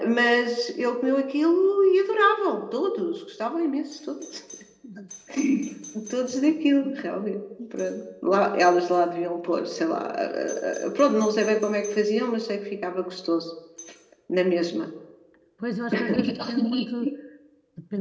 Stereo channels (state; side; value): identical; both; correlation 1.00